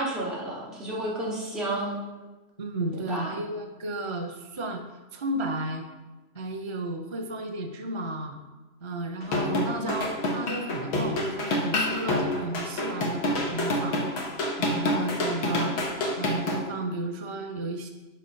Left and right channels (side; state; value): right; late; 3.0 ms